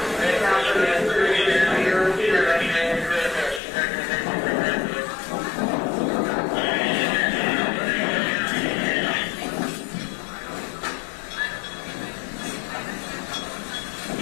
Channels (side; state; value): right; drops out; at 3.6 s